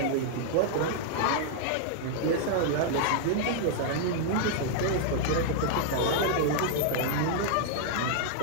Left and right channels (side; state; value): both; different; correlation -0.01